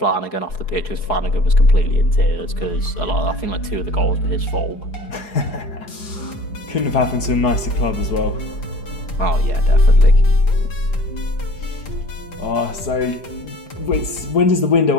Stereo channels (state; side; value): late; right; 4.7 ms